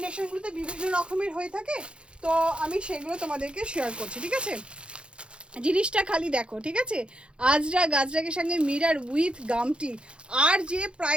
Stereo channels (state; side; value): late; left; 0.056 ms